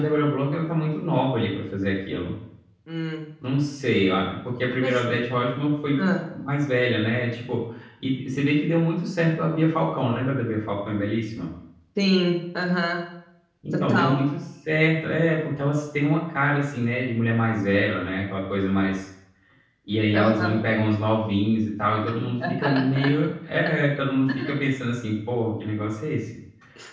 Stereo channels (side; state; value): both; identical; correlation 1.00